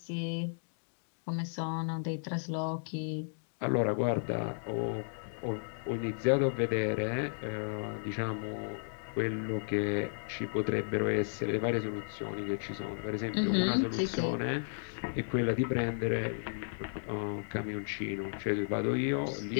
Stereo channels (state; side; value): silent; right; digital silence